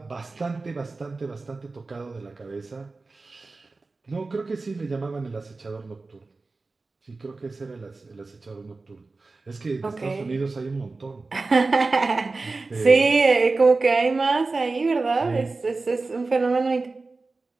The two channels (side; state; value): left; quieter; 3.7 dB